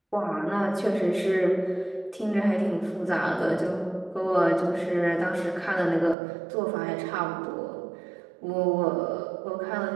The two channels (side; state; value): left; drops out; at 6.2 s